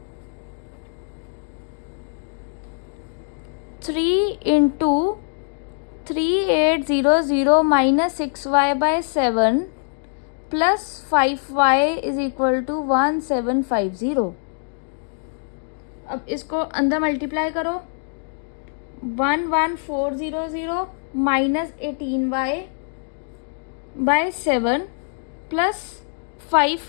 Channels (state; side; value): silent; right; digital silence